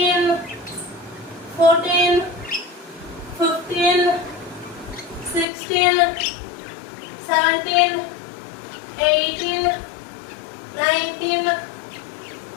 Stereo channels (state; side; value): drops out; right; at 5.5 s